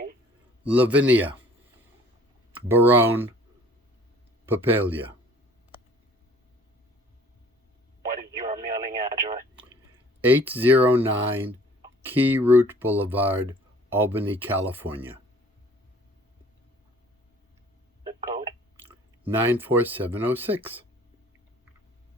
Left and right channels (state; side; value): normal; both; correlation 0.52